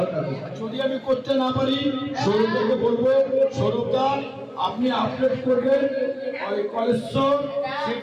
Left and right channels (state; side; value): identical; both; correlation 1.00